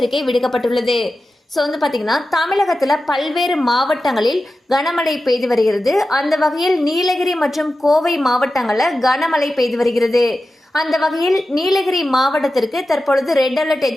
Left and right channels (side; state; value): both; normal; correlation 0.93